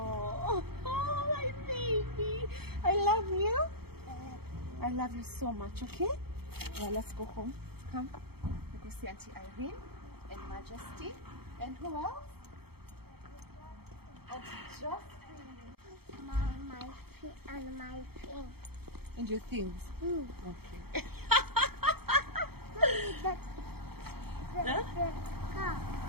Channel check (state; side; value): late; left; 0.96 ms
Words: my baby. I love you. I love you so much, okay? Well, let's go home. Come. We go see Auntie Irene and Majesty. And who else? Auntie Jocelyn. My thing. And your things. Okay. The car.